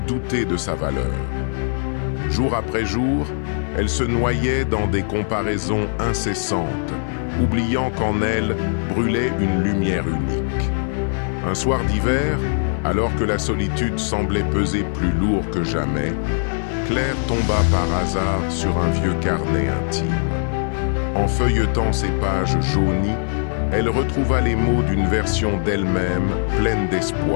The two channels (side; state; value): right; silent; 57 dB below the other